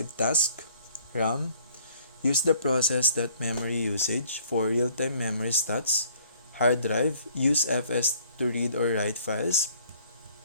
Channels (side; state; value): both; inverted; correlation -0.59